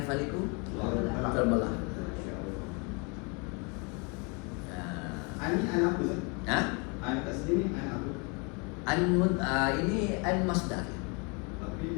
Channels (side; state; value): right; quieter; 32.5 dB